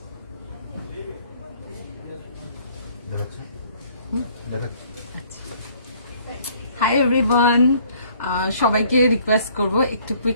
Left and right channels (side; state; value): both; inverted; correlation -0.59